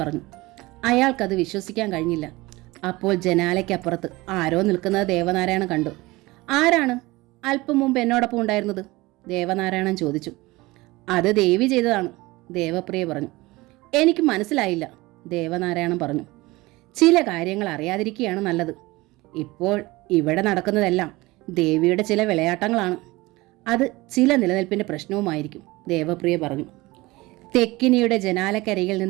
അയാൾക്കത് വിശ്വസിക്കാൻ കഴിഞ്ഞില്ല. അപ്പോൾ ജനാലയ്ക്കപ്പുറത്ത് ആരോ നിൽക്കുന്നത് ദേവനാരായണൻ കണ്ടു. ആരാണ് അല്പം മുമ്പ് എന്നോടൊപ്പം ഉണ്ടായിരുന്നത്? ദേവനാരായണൻ ചോദിച്ചു. അത് ദേവി ചെയ്തതാണ്, ദേവപ്രിയ പറഞ്ഞു. എനിക്ക് മനസ്സിലായില്ല, ദേവനാരായണൻ പറഞ്ഞു. ചില കാര്യങ്ങൾ അറിയാതിരിക്കുകയാണ് നല്ലത്. ഇപ്പോൾ ഇവിടെ നടക്കുന്നതെല്ലാം ദേവിയുടെ ചില വിളയാട്ടങ്ങളാണ്. അത് ചില നിലനിൽപ്പിൻ്റെ പ്രശ്നവുമായിരിക്കും, ദേവപ്രിയ പറഞ്ഞു. തെക്കിനിയുടെ ജനാലക്കരികിൽ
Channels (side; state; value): left; quieter; 21.0 dB